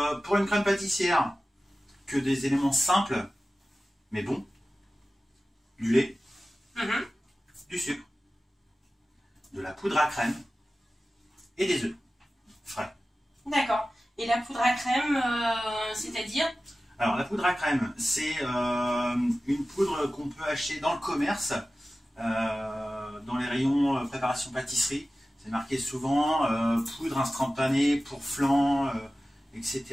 pour une crème pâtissière, que des éléments simples, mais bons. Du lait, du sucre, de la poudre à crème et des œufs frais. D'accord. Et la poudre à crème, c'est-à-dire? Alors, la poudre à crème, c'est une poudre qu'on peut acheter dans le commerce, dans les rayons préparation pâtisserie. C'est marqué souvent poudre instantanée pour flan, etc.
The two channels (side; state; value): both; normal; correlation 0.95